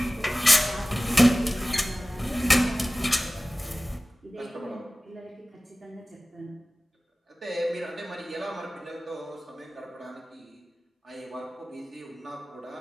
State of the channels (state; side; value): normal; both; correlation 0.98